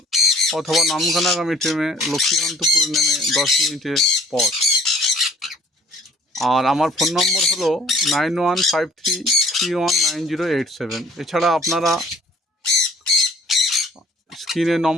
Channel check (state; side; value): normal; both; correlation 0.54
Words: অথবা নামখানাগামী ট্রেনে লক্ষ্মীকান্তপুর নেমে 10 মিনিটের পথ। আর আমার ফোন নম্বর হলো 9153319087। এছাড়া আপনারা স্ক্রিনে